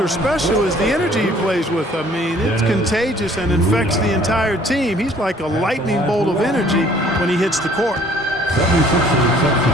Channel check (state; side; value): normal; both; correlation 0.57